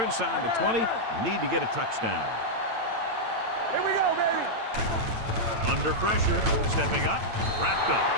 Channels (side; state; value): left; late; 8.9 ms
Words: inside the 20. Need to get a touchdown. Here we go, baby. Under pressure, stepping up, wrapped up.